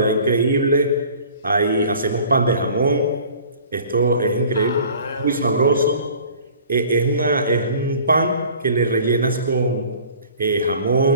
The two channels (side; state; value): both; inverted; correlation -0.48